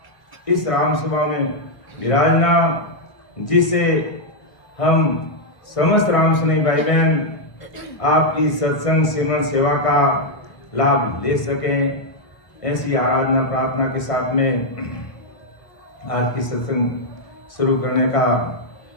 इस राम सभा में विराजना, जिससे हम समस्त राम सनी भाई बहन आपकी सत्संग सेवन सेवा का लाभ ले सकें, ऐसी आराधना प्रार्थना के साथ में आज की सत्संग शुरू करने का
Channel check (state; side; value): late; right; 1.3 ms